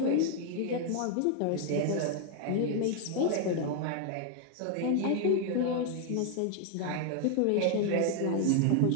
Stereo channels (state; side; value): different; both; correlation 0.00